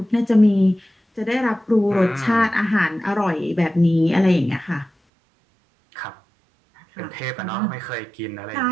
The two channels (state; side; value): drops out; left; at 4.9 s